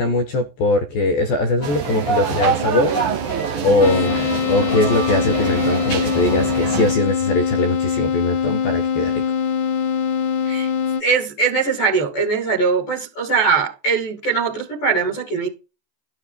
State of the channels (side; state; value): right; late; 14 ms